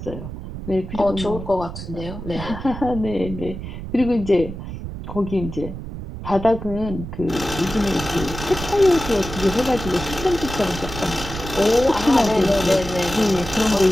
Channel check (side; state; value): right; noise; rumble, 9 dB below the sound